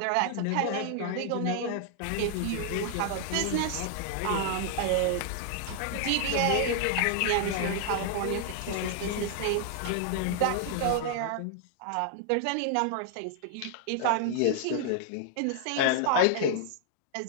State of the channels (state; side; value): different; both; correlation -0.01